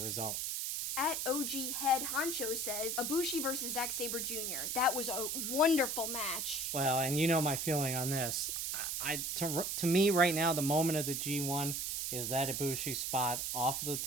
At OG Head Honcho says, Ibushi versus Zack Sabre Jr. That was a wonderful match. Well, and you know my feeling on this. To me right now, the moment of the G1 is that Ibushi spot off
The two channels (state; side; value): noise; right; hiss, 1 dB below the sound